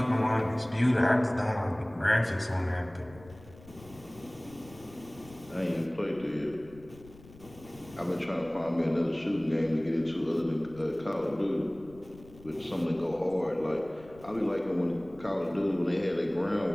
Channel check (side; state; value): left; noise; rumble, 21 dB below the sound